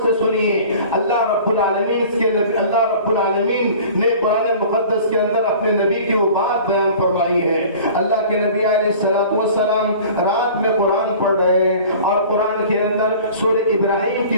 سے سنیے۔ اللہ رب العالمین نے قرآن مقدس کے اندر اپنے نبی کی وہ بات بیان فرمائی ہے۔ اللہ کے نبی علیہ السلام رات میں قرآن پڑھ رہے ہیں، اور قرآن کے اندر سورہ ابراہیم کی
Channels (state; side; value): inverted; both; correlation -0.44